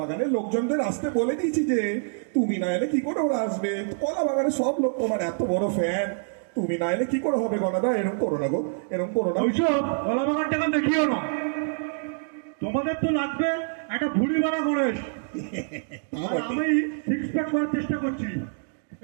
লোকজনদের আসতে বলে দিয়েছি যে তুমি না এলে কি করে ওরা আসবে? কলা বাগানের সব লোক তোমার এত বড় ফ্যান, তুমি না এলে কি করে হবে গনাদা? এরকম করো না গো, এরকম করো না। ওইসব কলা বাগানটাকে দেখিও না। তোমাদের তো লাগবে একটা ভুড়ি মারা গণেশ, আর আমি 6 প্যাক করার চেষ্টা করছি।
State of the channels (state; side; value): silent; left; digital silence